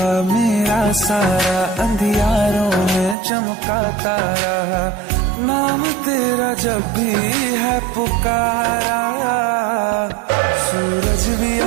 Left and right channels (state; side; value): drops out; left; at 3.2 s